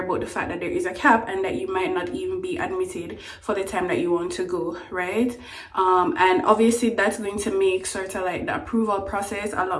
the fact that there is a cap and that you might not even be admitted for the time that you want to go, right? And obviously that's going to make sort of like the approval process a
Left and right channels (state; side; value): identical; both; correlation 1.00